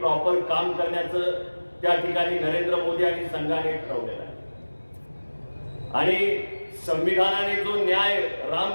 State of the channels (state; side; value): inverted; both; correlation -1.00